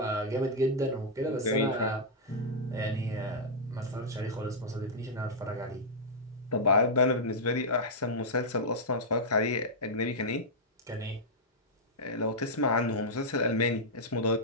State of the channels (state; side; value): normal; both; correlation -0.07